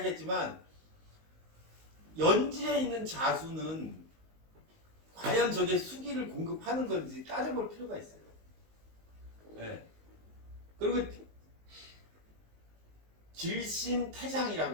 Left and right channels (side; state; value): left; late; 19 ms